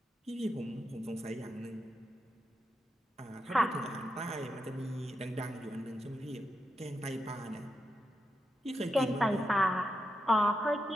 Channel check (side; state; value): both; normal; correlation 0.85